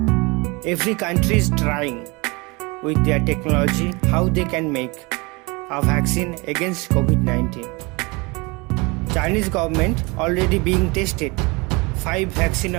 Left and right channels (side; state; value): left; quieter; 26.7 dB